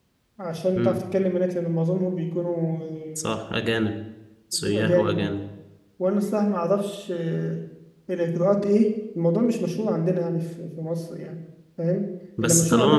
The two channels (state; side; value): identical; both; correlation 1.00